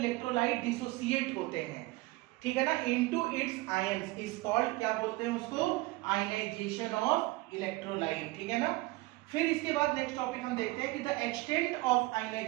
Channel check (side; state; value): left; quieter; 21.1 dB